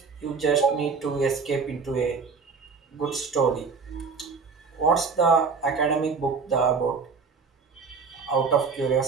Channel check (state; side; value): quieter; left; 5.1 dB